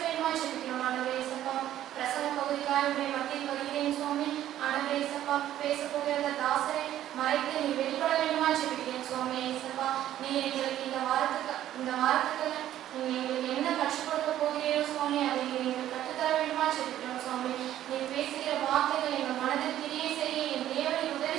வேண்டுமாய் ஜெபிக்கிறோம். ஆண்டவரே இயேசுப்பா, பிரசன பகுதிக்காக மத்தியில் வருகிறேன் சுவாமி. ஆண்டவரே இயேசுப்பா, பேச போகிற தாசரை மறைத்து நீ வெளிப்பட வேண்டுமாய் ஜெபிக்கிறேன் சுவாமி. இயேசுப்பா, நீ எங்களுக்கு இந்த வாரத்துக்கு நீ எங்களுக்கு என்ன கற்றுக் கொடுக்க போகிறீரோ சுவாமி, அதை நீங்கள் கற்றுத்தர வேண்டுமாய் ஜெபிக்கிறோம் சுவாமி. நீ பேசுகிற வார்த்தைகள் எங்கள் மனதில் கிரியை செய்ய என் தேவனை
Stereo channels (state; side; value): quieter; left; 12.4 dB